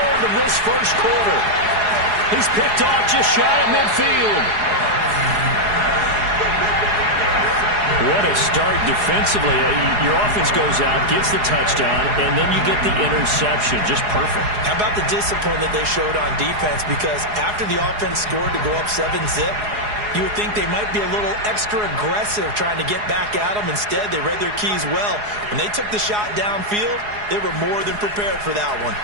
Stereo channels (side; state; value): left; late; 4.8 ms